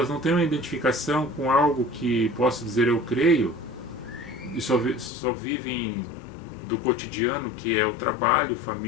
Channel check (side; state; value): right; drops out; at 5.1 s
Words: não têm uma identificação com algo que possa dizer eu creio, e só vivem do cotidiano, que é o trabalho,